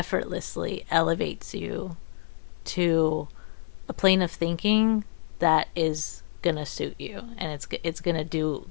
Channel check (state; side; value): silent; right; 59 dB below the other